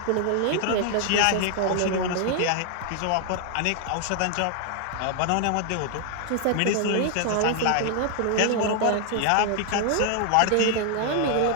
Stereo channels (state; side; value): different; both; correlation 0.00